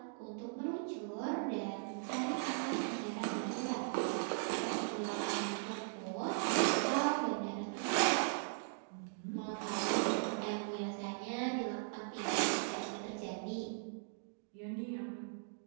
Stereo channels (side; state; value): left; silent; digital silence